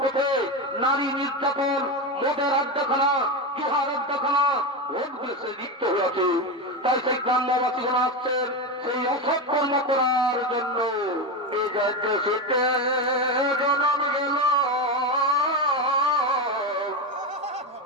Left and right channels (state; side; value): normal; both; correlation 0.15